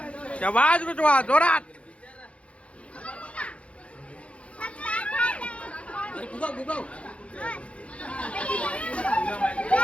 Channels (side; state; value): right; late; 0.062 ms